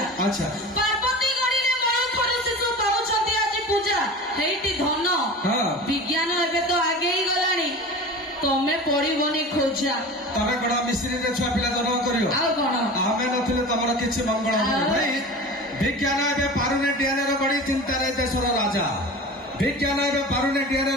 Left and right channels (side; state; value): both; normal; correlation 0.34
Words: अच्छा पार्वती गढ़ीले मणु खरु शिशु पाउछंती आज पूजा हेइटी धन विज्ञान एबे तो आगे ही गलानी तमे पड़िबनी खोजा तमे बड़ा मिस्त्री रे छुआ पिला जन्म करियो आ कोन आमे नथिले तमर किछि मंगल भाई विज्ञान एबे पारुने डीएनए रो गड़ी चिंता रे देशर राजा विज्ञान एबे पारुने डीएनए